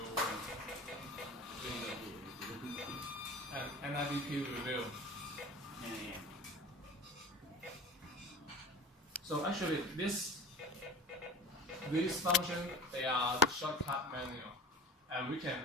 window. And NIPP review. So actually these functions, they are the shortcut menu. And we can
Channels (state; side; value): normal; both; correlation 0.37